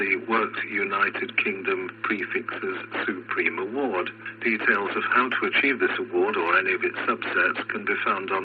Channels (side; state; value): both; identical; correlation 1.00